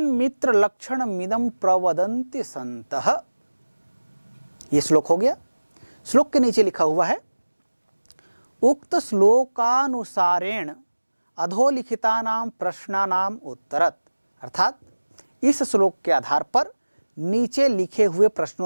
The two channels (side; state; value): both; inverted; correlation -1.00